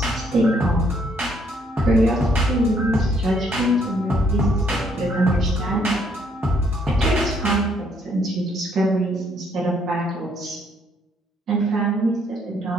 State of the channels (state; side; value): normal; both; correlation 0.68